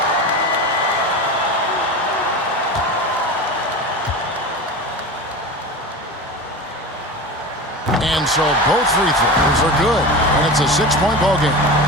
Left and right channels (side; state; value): both; normal; correlation 0.29